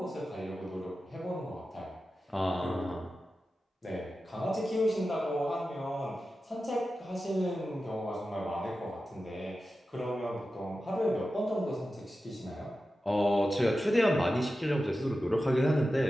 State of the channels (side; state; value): both; normal; correlation 0.93